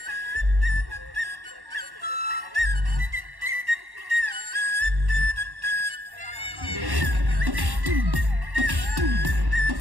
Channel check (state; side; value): late; left; 1.1 ms